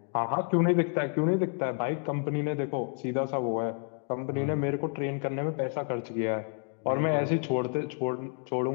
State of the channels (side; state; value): right; quieter; 38.2 dB